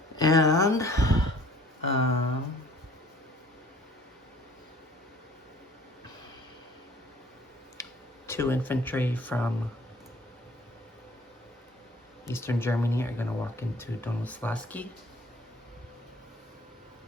And 2 infantry from Eastern Germany are going to walk into Donauslaski.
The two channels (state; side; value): normal; both; correlation 0.53